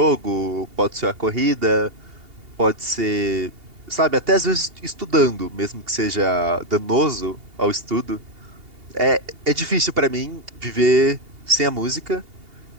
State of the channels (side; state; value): left; late; 2.8 ms